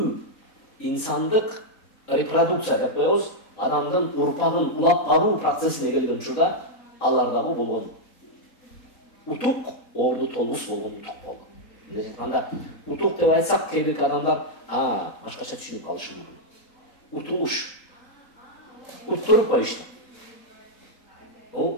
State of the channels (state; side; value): late; right; 4.1 ms